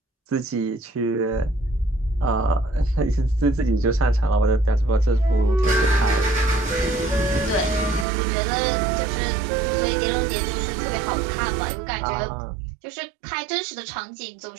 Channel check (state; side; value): drops out; left; at 8.1 s